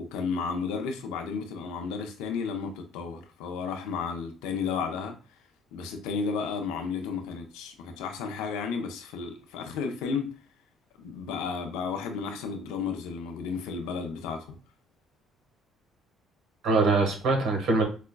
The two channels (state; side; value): normal; both; correlation 0.50